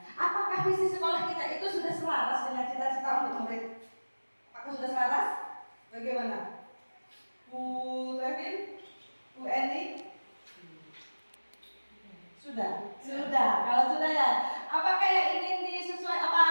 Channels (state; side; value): inverted; both; correlation -1.00